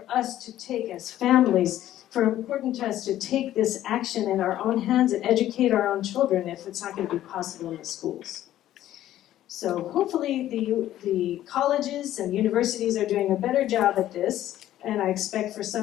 us to take as families, important to us to take this action in our own hands and educate our own children if it's not going to be possible in the schools. So hopefully the colleges and universities are doing a better job at this, and I expect for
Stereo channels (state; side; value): quieter; right; 13.0 dB